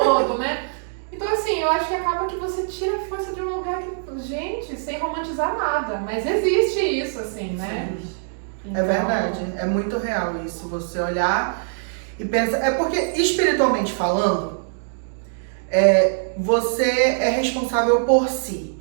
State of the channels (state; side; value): silent; left; digital silence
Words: né? Então, assim, eu acho que acaba que você tira a força de um lugar que, gente, sem romantizar nada, mas existe isso, assim, né? É verdade, é muito real isso, você olhar e pensar. É porque, espiritualmente falando, você é responsável por si.